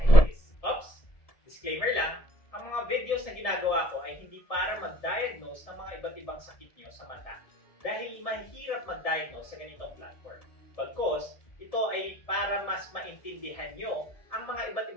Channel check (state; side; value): late; right; 1.7 ms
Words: this. Oops! Disclaimer lang, ang mga videos na ginagawa ko ay hindi para mag-diagnose ng mga iba't ibang sakit nyo sa mata dahil mahirap mag-diagnose sa ganitong platform. Bagkus, ito ay para mas maintindihan nyo ang mga iba't